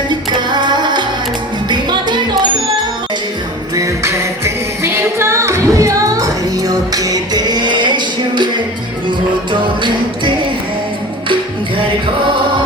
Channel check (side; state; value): both; normal; correlation 0.35